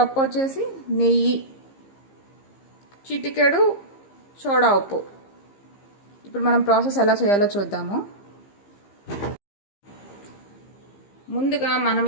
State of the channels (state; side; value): late; right; 15 ms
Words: వచ్చేసి నెయ్యి, చిటికెడు సోడా ఉప్పు. ఇప్పుడు మనం ప్రాసెస్ ఎలా చేయాలో చూద్దాము. ముందుగా మనం